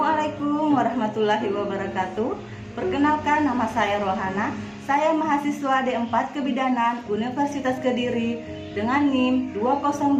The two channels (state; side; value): identical; both; correlation 1.00